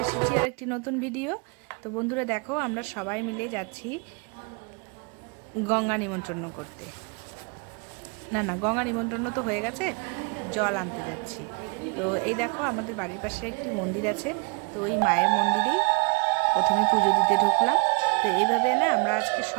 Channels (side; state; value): left; quieter; 34.2 dB